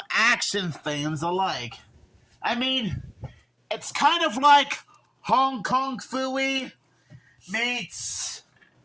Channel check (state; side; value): identical; both; correlation 1.00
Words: action fans alike. I mean, it's kind of like Hong Kong Phooey meets